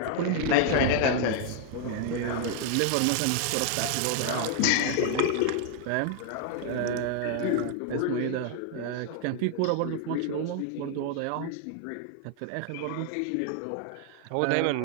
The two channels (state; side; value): different; both; correlation 0.00